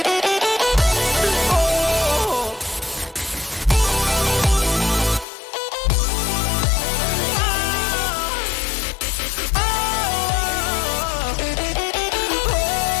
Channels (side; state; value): right; drops out; at 5.2 s